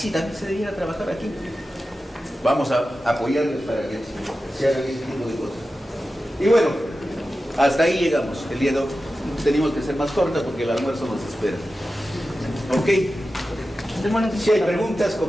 también se debiera trabajar aquí. Vamos a apoyarles para que se hagan ese tipo de cosas. Y bueno, hasta ahí llegamos. El día de hoy tenemos que ser más corta porque el almuerzo nos espera. ¿Ok? Si hay preguntas,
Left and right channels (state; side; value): normal; both; correlation 0.93